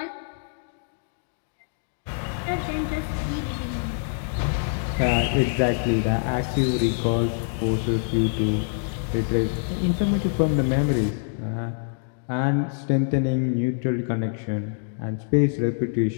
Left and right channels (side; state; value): right; silent; digital silence